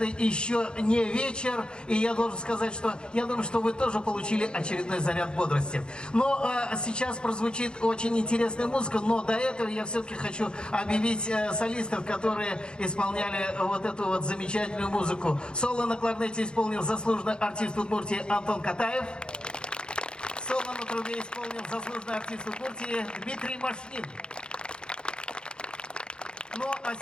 еще не вечер. И я должен сказать, что я думаю, что вы тоже получили очередной заряд бодрости. Но сейчас прозвучит очень интересная музыка. Но до этого я все-таки хочу объявить солистов, которые исполняли вот эту вот замечательную музыку. Соло на кларнете исполнил заслуженный артист Удмуртии Антон Катаев. Соло на трубе исполнил заслуженный артист Удмуртии Дмитрий Машнин. Ну, а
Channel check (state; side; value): late; right; 0.050 ms